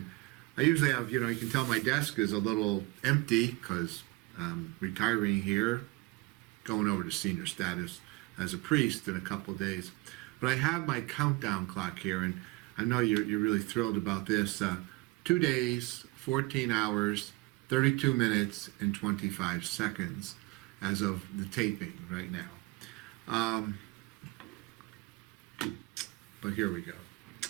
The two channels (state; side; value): quieter; left; 22.6 dB